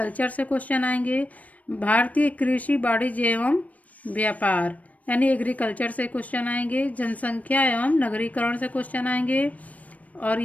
से क्वेश्चन आएंगे। भारतीय कृषि, वाणिज्य एवं व्यापार यानी एग्रीकल्चर से क्वेश्चन आएंगे। जनसंख्या एवं नगरीकरण से क्वेश्चन आएंगे। और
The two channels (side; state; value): right; late; 0.070 ms